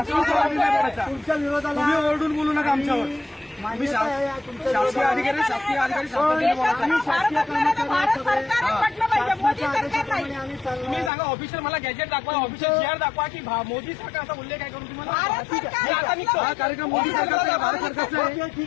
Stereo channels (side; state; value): right; drops out; at 11.1 s